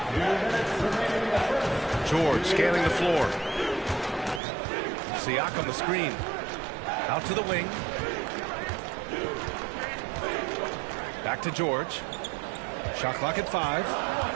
George scanning the floor. Siakam the screen. Out to the wing. Back to George. Shot clock at 5.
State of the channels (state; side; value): drops out; left; at 4.4 s